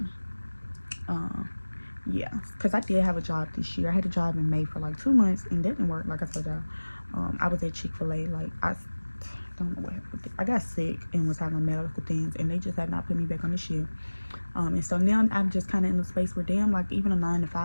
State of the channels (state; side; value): inverted; both; correlation -1.00